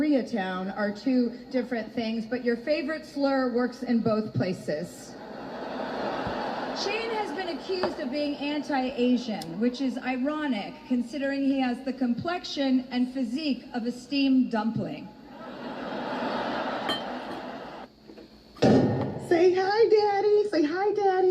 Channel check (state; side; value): identical; both; correlation 1.00